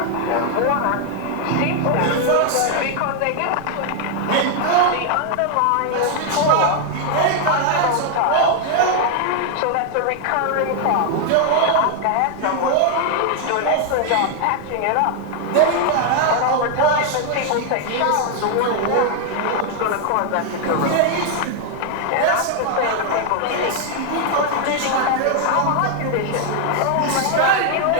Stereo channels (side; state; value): both; different; correlation 0.00